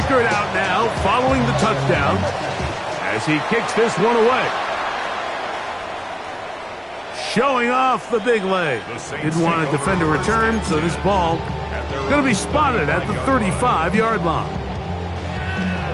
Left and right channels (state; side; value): identical; both; correlation 1.00